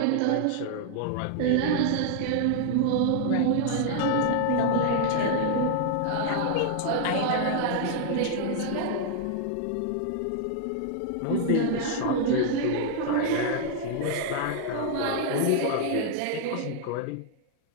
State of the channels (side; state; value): both; different; correlation 0.00